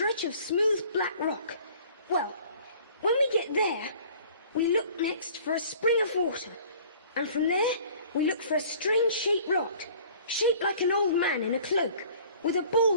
of smooth black rock. Well, when we get there, we look next for a spring of water, and from there, we look for a strange-shaped rock, shaped like an old man in a cloak, with a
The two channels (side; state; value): both; inverted; correlation -0.50